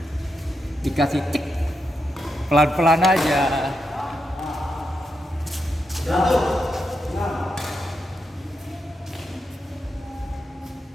Dikasih cek pelan-pelan aja.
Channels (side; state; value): both; normal; correlation 0.85